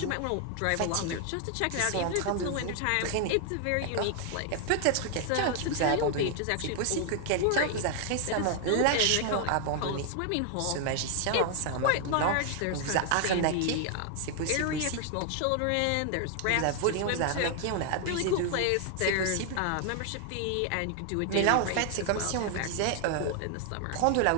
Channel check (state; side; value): different; both; correlation 0.00